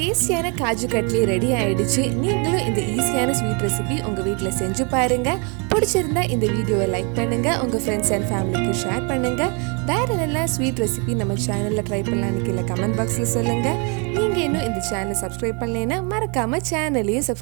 காஜு கட்லி ரெடி ஆயிடுச்சு. நீங்களும் இந்த ஈஸியான ஸ்வீட் ரெசிபி உங்கள் வீட்டில் செஞ்சு பாருங்க. பிடிச்சிருந்தா இந்த வீடியோவை லைக் பண்ணுங்க, உங்கள் ஃப்ரெண்ட்ஸ் அண்ட் ஃபேமிலிக்கு ஷேர் பண்ணுங்க. வேற என்னெல்லாம் ஸ்வீட் ரெசிபி நம்ம சேனலில் ட்ரை பண்ணலான்னு கீழே கமெண்ட் பாக்ஸில் சொல்லுங்க. நீங்கள் இன்னும் இந்த சேனலை சப்ஸ்கிரைப் பண்ணலைன்னா மறக்காம சேனலையும்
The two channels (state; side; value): quieter; left; 34.8 dB